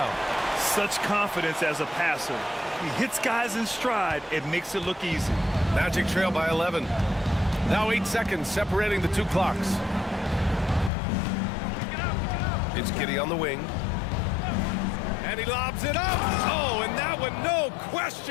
Such confidence as a passer. He hits guys in stride. It makes it look easy. Magic trail by 11. Now 8 seconds separating the 2 clocks. It's Giddey on the wing. And he lobs it up. Oh, and that one, no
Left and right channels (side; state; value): right; drops out; at 10.9 s